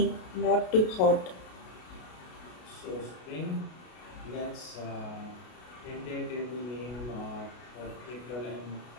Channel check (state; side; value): late; right; 33 ms